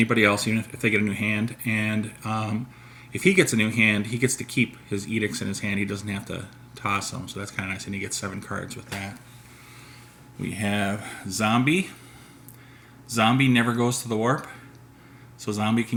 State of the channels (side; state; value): both; identical; correlation 1.00